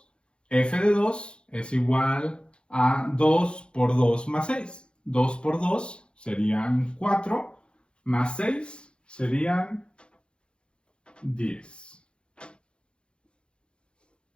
F de 2 es igual a 2 por 2 más 6. 2 por 2 serían 4, más 6 serían 10.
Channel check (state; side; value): late; right; 0.055 ms